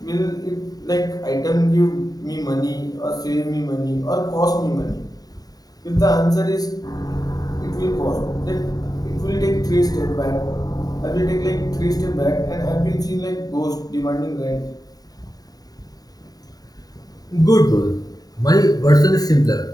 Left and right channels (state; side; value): late; right; 0.18 ms